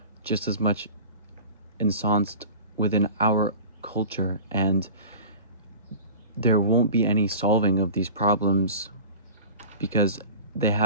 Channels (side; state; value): both; inverted; correlation -0.37